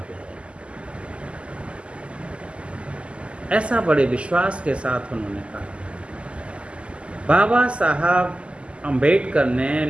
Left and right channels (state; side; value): late; left; 0.054 ms